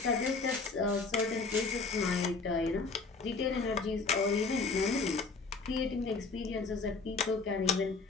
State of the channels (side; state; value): right; quieter; 4.3 dB